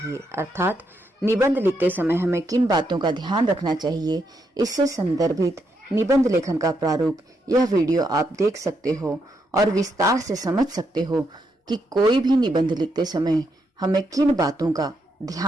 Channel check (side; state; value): both; normal; correlation 0.79